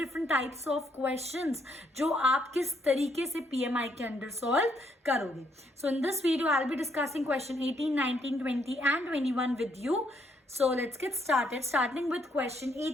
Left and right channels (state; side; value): normal; both; correlation 0.73